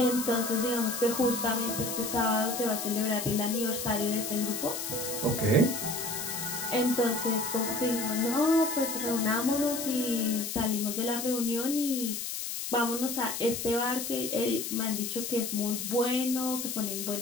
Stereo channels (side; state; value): left; noise; hiss, 4 dB below the sound